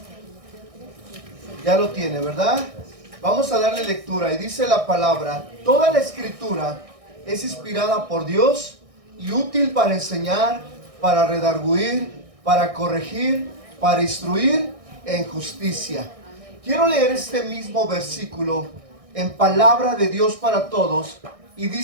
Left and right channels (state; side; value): late; left; 1.6 ms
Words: Ya lo tiene, ¿verdad? Vamos a darle lectura. Y dice la palabra: toda la escritura es inspirada por Dios y útil para enseñar, para redarguir, para corregir, para instruir en justicia. Quiero leer este mismo versículo en Palabra de Dios para Todos. Y